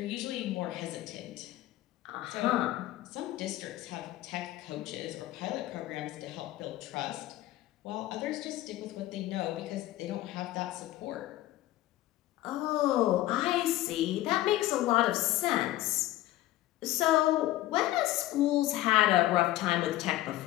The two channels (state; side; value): quieter; right; 15.8 dB